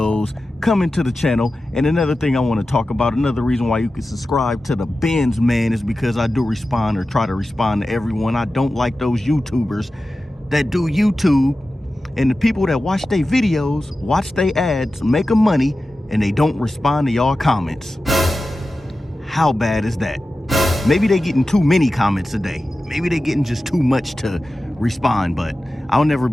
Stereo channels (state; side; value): normal; both; correlation 0.94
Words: coming to the channel. And another thing I want to talk about, another reason why you can subscribe to the Benz Man is because I do respond or try to respond to everyone. I don't like those YouTubers that do YouTube and the people that watch their videos, watch their ads, make them money, and they don't respond to y'all comments. How bad is that? Maybe they getting too many comments a day. Maybe they getting just too much to respond, but I'll never